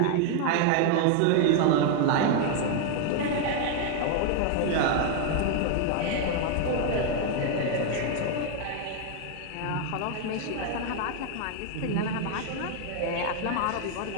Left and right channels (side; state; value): both; different; correlation 0.00